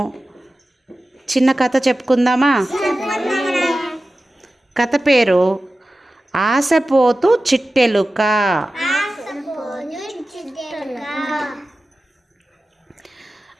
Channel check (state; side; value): normal; both; correlation 0.95